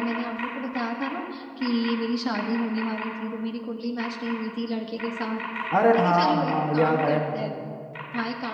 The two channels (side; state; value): both; identical; correlation 1.00